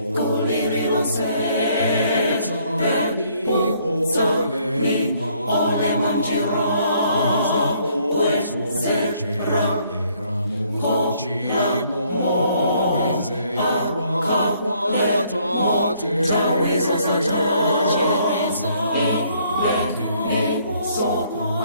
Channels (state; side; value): inverted; both; correlation -0.66